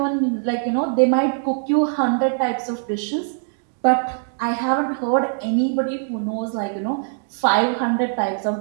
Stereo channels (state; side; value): silent; left; digital silence